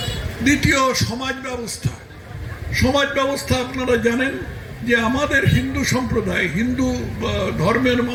দ্বিতীয়, সমাজ ব্যবস্থা আপনারা জানেন যে আমাদের হিন্দু সম্প্রদায়, হিন্দু ধর্মের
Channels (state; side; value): identical; both; correlation 1.00